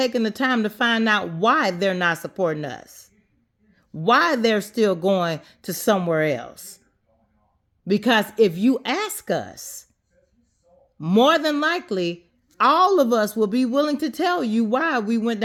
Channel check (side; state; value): both; identical; correlation 1.00